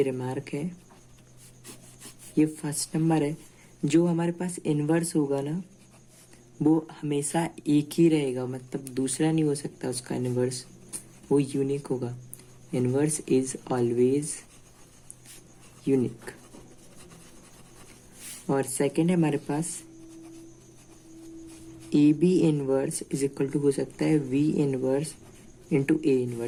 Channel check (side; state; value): both; identical; correlation 1.00